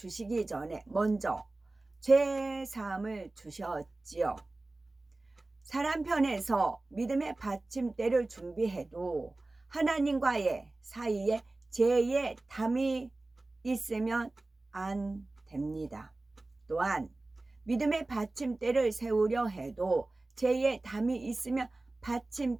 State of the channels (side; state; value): left; quieter; 3.0 dB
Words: 전에 먼저 죄 사함을 주셨지요. 사람 편에서 믿음의 받침대를 준비해도 하나님과의 사이에 죄의 담이 있으면 안 됩니다. 또한 믿음의 받침대를 세우려 해도 죄의 담이 있으면